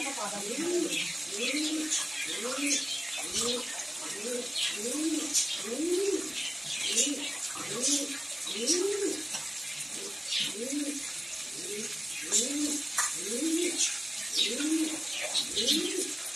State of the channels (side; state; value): both; normal; correlation 0.97